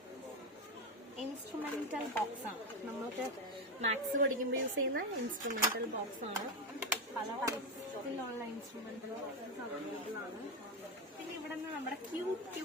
ഇൻസ്ട്രുമെന്റൽ ബോക്സ് ആണ്. നമ്മൾക്ക് മാത്സ് പഠിക്കുമ്പോൾ യൂസ് ചെയ്യുന്ന ഇൻസ്ട്രുമെന്റൽ ബോക്സ് ആണ്. പല ടൈപ്പിലുള്ള ഇൻസ്ട്രുമെന്റൽ ബോക്സസ് അവൈലബിൾ ആണ്. പിന്നെ ഇവിടെ നിന്ന് നമ്മുടെ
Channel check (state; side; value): normal; both; correlation 0.12